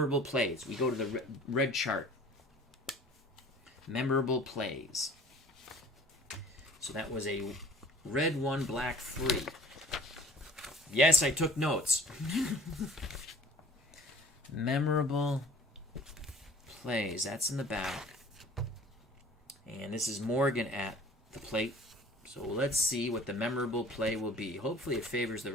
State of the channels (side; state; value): both; normal; correlation 0.49